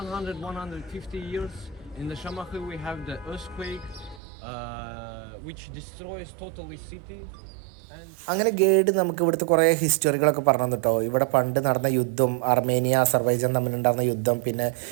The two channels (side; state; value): left; drops out; at 4.2 s